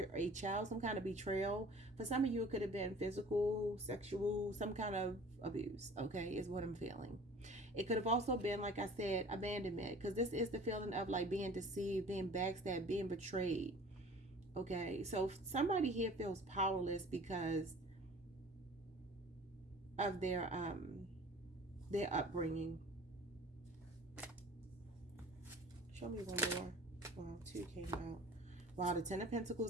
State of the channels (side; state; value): both; normal; correlation 0.46